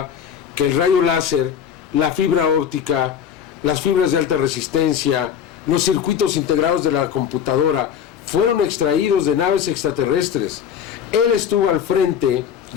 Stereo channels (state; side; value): quieter; right; 8.4 dB